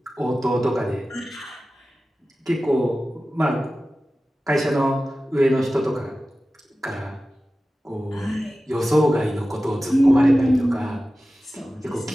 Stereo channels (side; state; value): both; normal; correlation 0.95